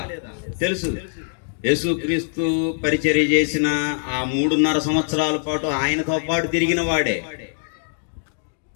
తెలుసు. యేసుక్రీస్తు పరిచర్య చేసిన ఆ 3.5 సంవత్సరాల పాటు ఆయనతో పాటు తిరిగిన వాడే,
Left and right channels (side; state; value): right; silent; digital silence